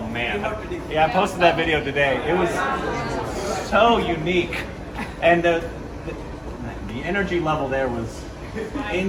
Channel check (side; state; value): both; identical; correlation 1.00